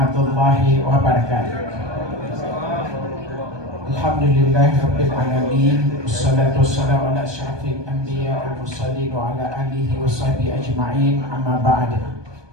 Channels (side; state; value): left; late; 1.2 ms